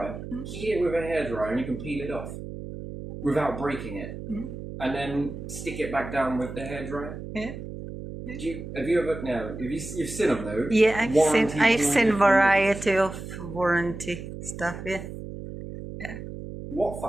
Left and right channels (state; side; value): noise; right; hum, 10 dB below the sound